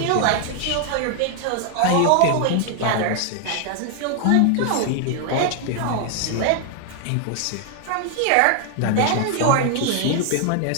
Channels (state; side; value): different; both; correlation 0.00